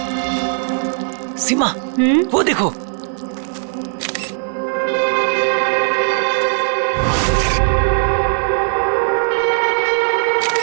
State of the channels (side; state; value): left; silent; digital silence